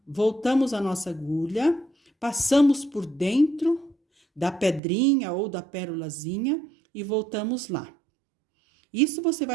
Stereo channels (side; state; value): left; drops out; at 4.8 s